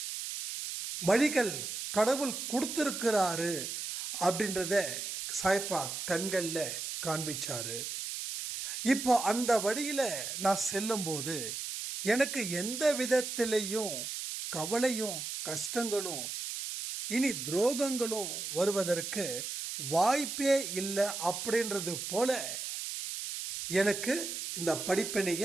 வழிகள் கடவுள் கொடுத்துருக்கிறாரு அப்படின்றத சாய்ப்பா கண்களில் காண்பிச்சாரு. இப்போ அந்த வழியில் நான் செல்லும்போது எனக்கு எந்த விதத்திலையும் கவலையும் கஷ்டங்களும் இனி துரோகங்களும் வருவதற்கு வாய்ப்பே இல்லை அப்படின்றது போல எனக்கு இந்த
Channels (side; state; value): right; noise; hiss, 5 dB below the sound